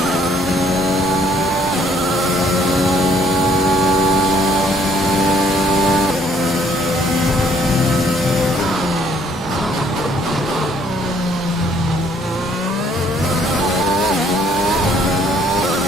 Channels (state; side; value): normal; both; correlation 0.64